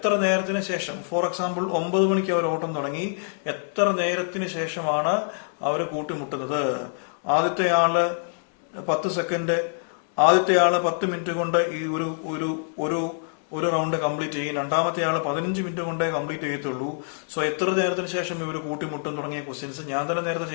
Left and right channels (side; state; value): right; silent; 62 dB below the other